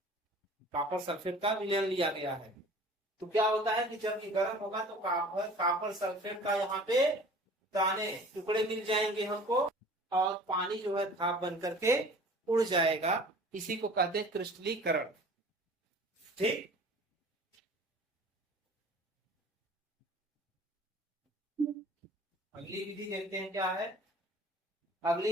कॉपर सल्फेट का विलयन लिया गया है। तो क्या होता है कि जब ये गर्म होगा तो कॉपर सल्फेट का यहाँ पे दाने टुकड़े मिल जाएंगे हमको, और पानी जो है भाप बन करके उड़ जाएगा। इसी को कहते हैं क्रिस्टलीकरण, ठीक। अगली विधि देखते हैं क्या है।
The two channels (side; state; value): both; normal; correlation 0.45